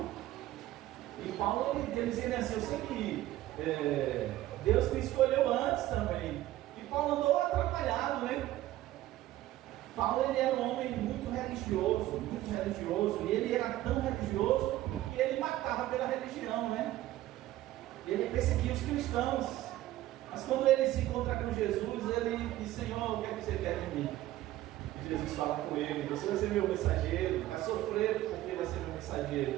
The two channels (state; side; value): quieter; left; 15.0 dB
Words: E Paulo, ele dizia assim, eu sei que Deus me escolheu antes também. E Paulo andou atrapalhado, né? Paulo, ele era um homem muito religioso, e ele era tão religioso que ele matava pela religião, né? Ele perseguia os cristãos. Mas quando ele se encontra com Jesus, ele diz, Senhor, o que é que você quer de mim? E Jesus fala com ele, você vai ser meu mensageiro, vai sofrer porque vai ser meu mensageiro,